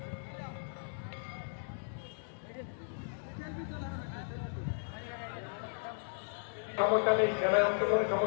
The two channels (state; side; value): silent; right; digital silence